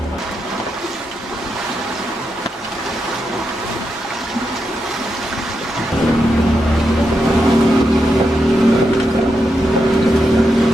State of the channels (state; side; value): normal; both; correlation 0.85